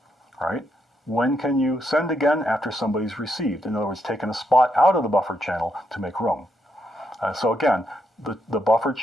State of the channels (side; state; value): both; normal; correlation 0.79